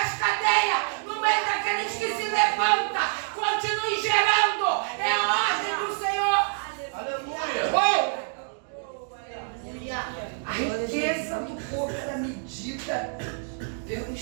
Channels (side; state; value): left; silent; 59 dB below the other